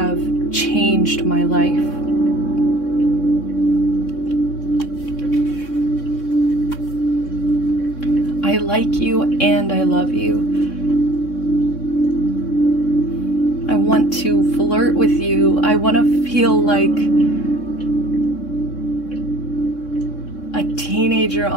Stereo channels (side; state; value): right; late; 3.6 ms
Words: changed my life. I like you and I love you. I want to flirt with you. I want to feel like a teenager